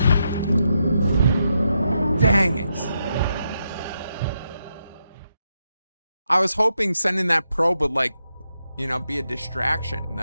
Dang it. I was hoping sending that probe would, like, you know, be a distraction,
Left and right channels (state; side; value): inverted; both; correlation -0.83